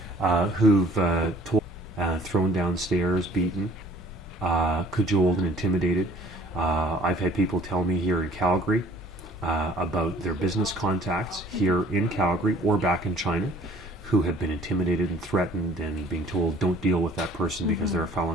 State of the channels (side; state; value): both; normal; correlation 0.54